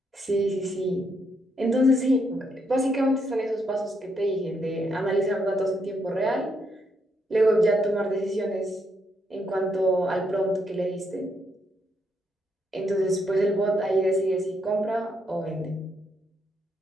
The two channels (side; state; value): both; normal; correlation 0.77